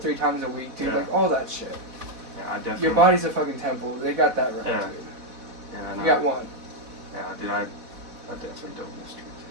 times a week, dude. Like, all that shit. Yeah, I definitely. Your body's a fucking temple. They got that right, dude. Yeah, I know. You got one. Yeah, dude, I definitely don't miss drinking.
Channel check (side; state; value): left; late; 4.1 ms